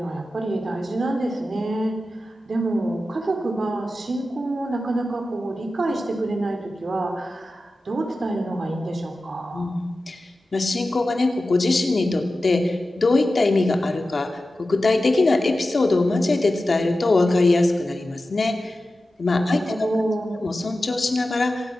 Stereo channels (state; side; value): normal; both; correlation 0.94